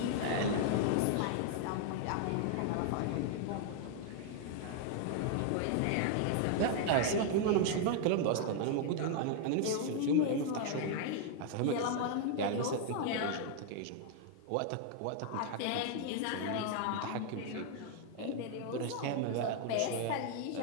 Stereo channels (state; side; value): different; both; correlation 0.00